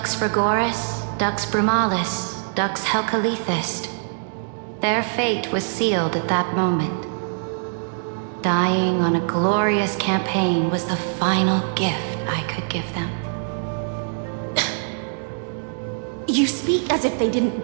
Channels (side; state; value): left; silent; digital silence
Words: Frigoris, Dux Brumalis, Dux Helcalethist. Their fate was sealed at that moment. Dying on a glorious campaign was the final gift I could give them. You speak as if they didn't